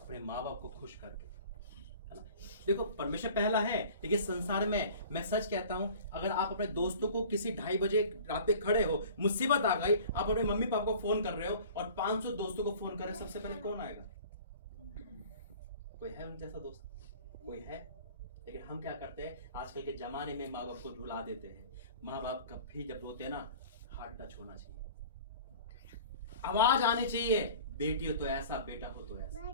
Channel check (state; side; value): inverted; both; correlation -0.45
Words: माँ बाप को खुश करके, है ना। देखो परमेश्वर पहला है, लेकिन संसार में मैं सच कहता हूँ, अगर आप अपने दोस्तों को किसी 2:30 बजे रात पे खड़े हो, मुसीबत आ गई, आप अपने मम्मी पापा को फोन कर रहे हो और 500 दोस्तों को फोन कर रहे हो, सबसे पहले कौन आएगा? कोई है उन जैसा दोस्त? कोई है? लेकिन हम क्या करते हैं आजकल के जमाने में, माँ बाप को रुला देते हैं। माँ बाप कभी जब रोते हैं ना, हार्ट टच होना चाहिए, आवाज आनी चाहिए, बेटी हो तो ऐसा, बेटा हो तो ऐसा।